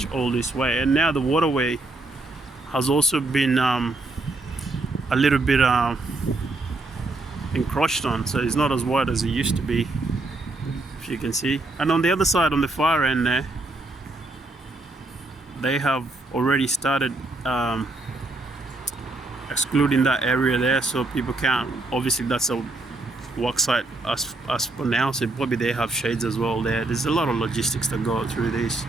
all this way. And now the waterway has also been a little bit encroached on, so it's not as wide as it used to be, if you can see. And on the other side, on the far end there, they have already started excluding that area there, so people can't. Obviously that's a work site as for now, so probably they have shades as well there. There's a lot of logistics that go through this.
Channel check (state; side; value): quieter; left; 3.0 dB